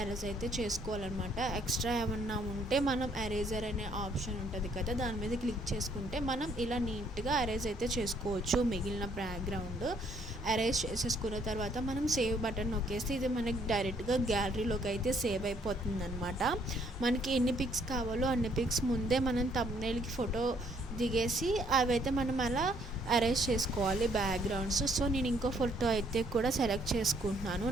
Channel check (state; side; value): normal; both; correlation 0.66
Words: ఎరేజ్ అయితే చేసుకోవాలన్నమాట. ఎక్స్ట్రా ఏమన్నా ఉంటే మనం ఎరేజర్ అనే ఆప్షన్ ఉంటుంది కదా, దాని మీద క్లిక్ చేసుకుంటే మనం ఇలా నీట్గా ఎరేజ్ అయితే చేసుకోవచ్చు. మిగిలిన బ్యాక్గ్రౌండ్ అరేంజ్ చేసేసుకున్న తర్వాత మనం సేవ్ బటన్ నొక్కేస్తే ఇది మనకి డైరెక్ట్గా గ్యాలరీలోకి అయితే సేవ్ అయిపోతుంది అనమాట. మనకి ఎన్ని పిక్స్ కావాలో అన్ని పిక్స్ ముందే మనం థంబ్నెయిల్కి ఫోటో దిగేసి అవైతే మనం అలా అరేంజ్ చేసుకోవాలి బ్యాక్గ్రౌండ్స్. సో నేను ఇంకో ఫోటో అయితే కూడా సెలెక్ట్ చేసుకుంటున్నాను.